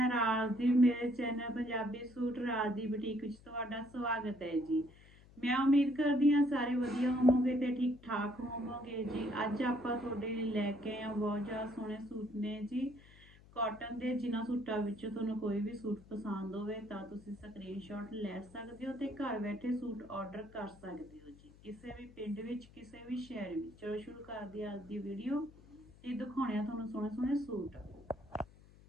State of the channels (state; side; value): noise; left; hum, 23 dB below the sound